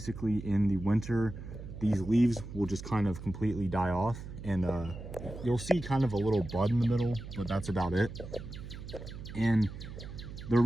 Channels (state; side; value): noise; right; hum, 11 dB below the sound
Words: in the winter, these leaves will just kind of completely die off, and you'll see kind of a little bud in the middle, but that's about it. And they're